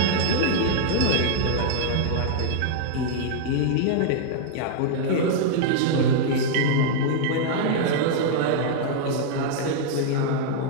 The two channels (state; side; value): different; both; correlation -0.01